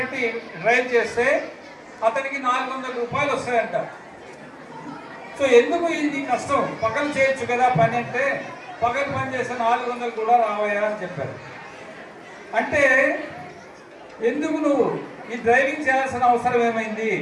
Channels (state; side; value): identical; both; correlation 1.00